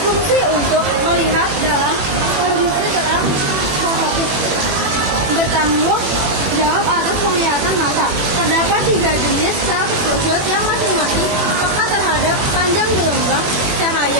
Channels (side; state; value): left; late; 21 ms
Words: untuk melihat dalam kondisi terang fotopik, bertanggung jawab atas penglihatan mata. Terdapat 3 jenis sel kerucut yang masing-masing peka terhadap panjang gelombang